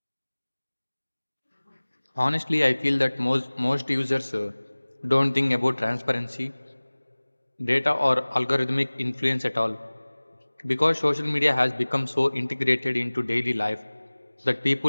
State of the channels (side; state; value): both; inverted; correlation -1.00